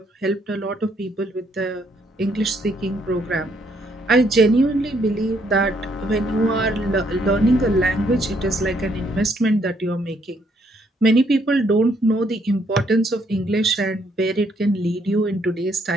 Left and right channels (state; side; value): normal; both; correlation 0.71